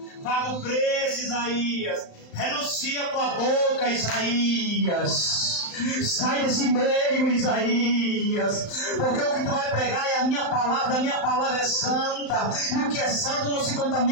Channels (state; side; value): late; right; 35 ms